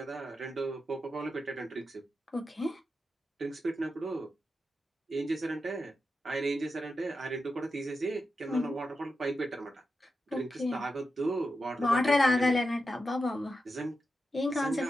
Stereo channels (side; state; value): both; normal; correlation 0.89